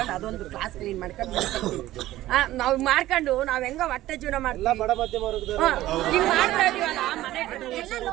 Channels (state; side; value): quieter; left; 15.3 dB